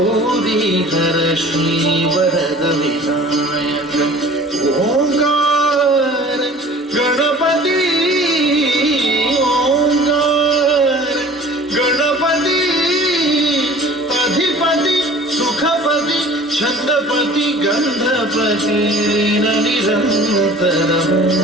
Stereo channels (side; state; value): both; normal; correlation 0.46